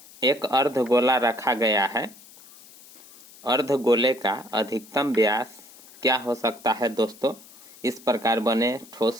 एक अर्धगोला रखा गया है। अर्धगोले का अधिकतम व्यास क्या हो सकता है? दोस्तों, इस प्रकार बने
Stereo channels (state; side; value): noise; left; hiss, 22 dB below the sound